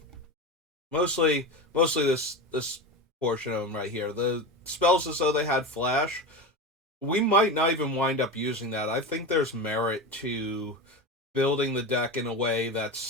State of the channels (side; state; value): both; normal; correlation 0.23